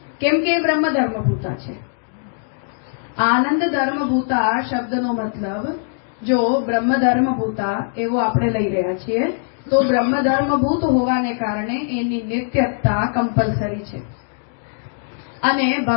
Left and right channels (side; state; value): right; silent; digital silence